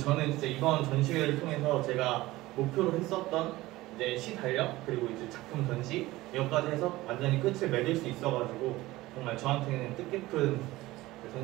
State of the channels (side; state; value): left; quieter; 18.3 dB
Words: 진짜 이번 전시회를 통해서 제가 목표로 했었던 이제 시 달력, 그리고 이제 작품 전시 이것까지 해서 완전히 끝을 맺을 수 있어가지고 정말 저한테는 뜻깊은